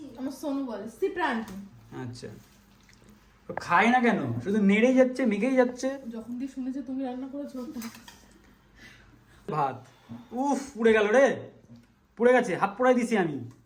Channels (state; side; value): identical; both; correlation 1.00